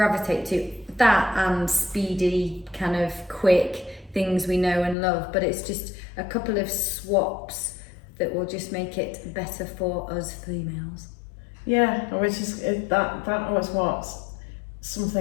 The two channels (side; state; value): right; drops out; at 5.0 s